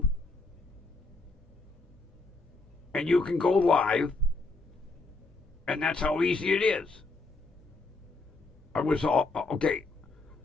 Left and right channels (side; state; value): right; quieter; 3.3 dB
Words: and you can go live, and that's how easy it is. I was all, okay,